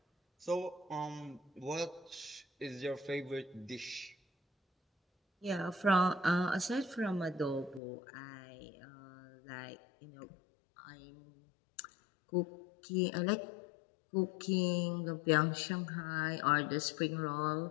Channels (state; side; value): drops out; right; at 7.8 s